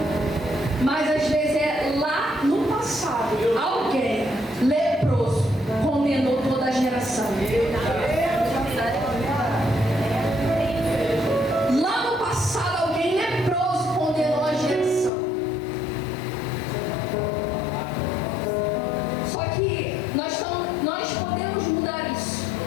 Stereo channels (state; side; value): drops out; right; at 15.1 s